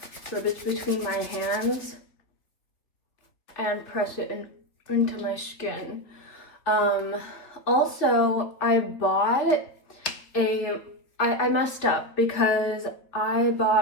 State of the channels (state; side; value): late; right; 3.7 ms